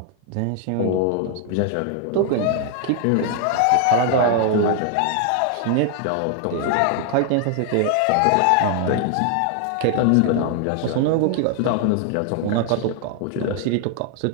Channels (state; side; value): different; both; correlation 0.00